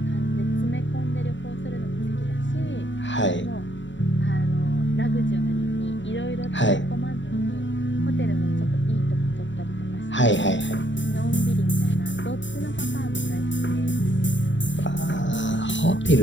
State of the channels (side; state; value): right; late; 0.54 ms